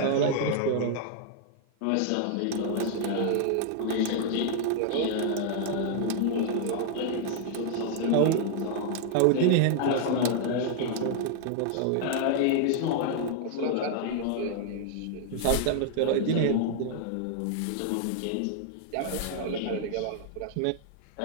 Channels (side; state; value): both; different; correlation 0.00